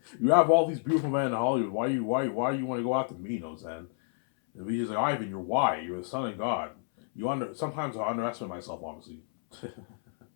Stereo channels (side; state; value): right; silent; 58 dB below the other